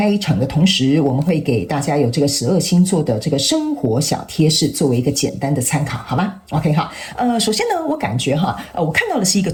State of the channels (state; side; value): identical; both; correlation 1.00